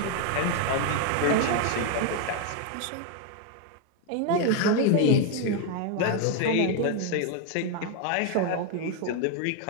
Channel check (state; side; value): different; both; correlation 0.01